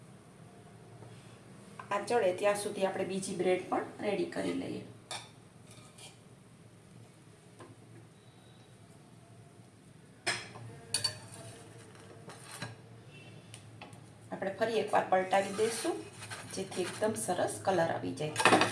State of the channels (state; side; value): identical; both; correlation 1.00